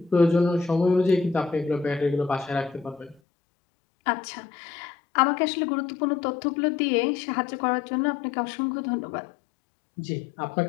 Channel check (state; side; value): drops out; right; at 3.2 s